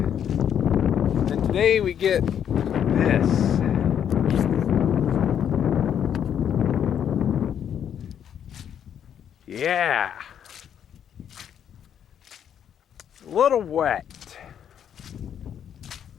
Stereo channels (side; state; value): right; quieter; 9.0 dB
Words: And today we get this. Yeah. A little wet.